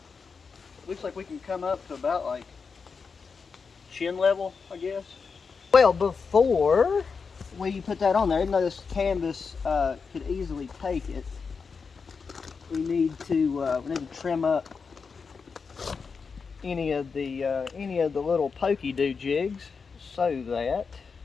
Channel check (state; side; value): quieter; right; 5.3 dB